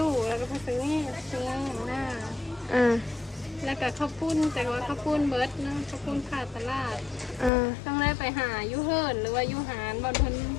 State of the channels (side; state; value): right; drops out; at 7.5 s